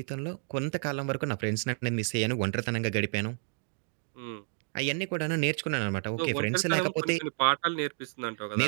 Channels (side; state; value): left; silent; 57 dB below the other